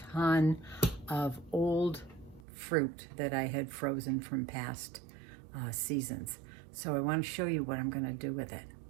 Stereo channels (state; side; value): drops out; left; at 2.5 s